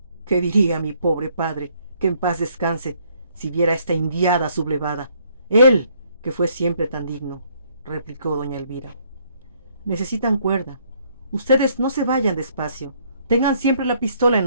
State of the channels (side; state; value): both; inverted; correlation -0.66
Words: ¿Qué diría mi pobre padre, que en paz descanse, si viera esta indiada sublevada? Él, que fue siempre tan digno, replicó doña Elvira. Necesitan cuerda. Ustedes no se vayan despacio. Tengan siempre la pistola